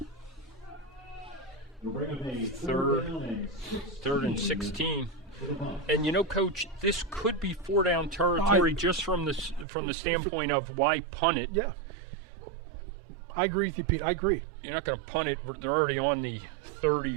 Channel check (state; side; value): drops out; left; at 9.7 s